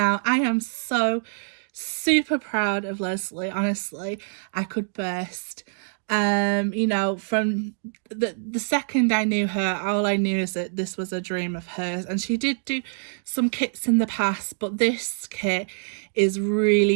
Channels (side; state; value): left; silent; digital silence